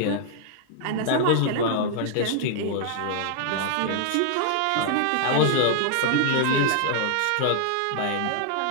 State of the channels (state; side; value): different; both; correlation -0.01